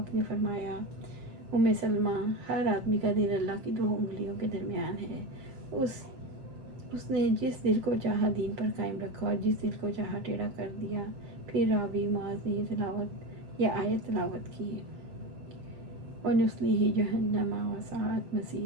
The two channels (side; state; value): left; late; 7.8 ms